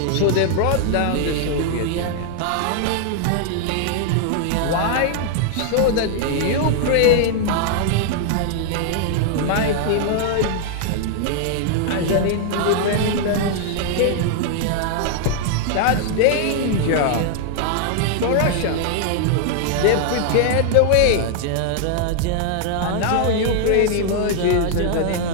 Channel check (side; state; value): both; different; correlation 0.00